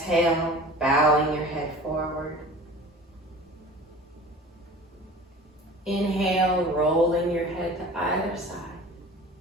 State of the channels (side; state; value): both; normal; correlation 0.41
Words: bowing your head forward. Inhale, rolling your head to either side.